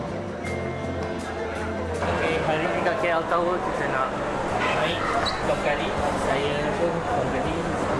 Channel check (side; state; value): both; identical; correlation 1.00